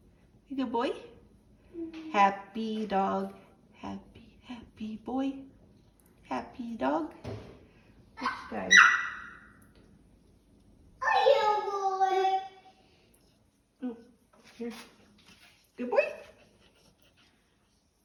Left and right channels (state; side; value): identical; both; correlation 1.00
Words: Good boy. Happy dog. Happy, happy boy. Happy dog. This guy. Oh, here. Good boy.